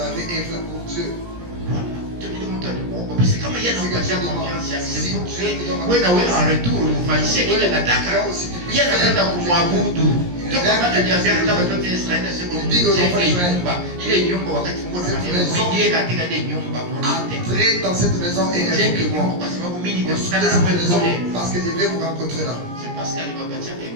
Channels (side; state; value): left; late; 17 ms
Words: œuvré pour Dieu. Entrez dans cette maison et invoquez-moi. Parce que je vais vous rencontrer là. Parce